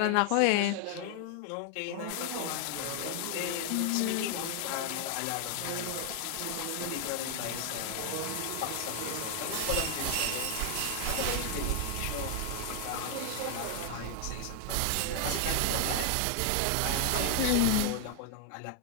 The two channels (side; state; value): both; different; correlation 0.00